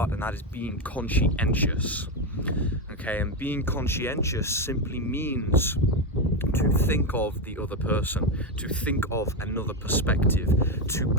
and that is being conscientious. Okay, and being conscientious simply means to think of the other person, to think of another perspective, to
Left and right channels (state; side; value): normal; both; correlation 0.11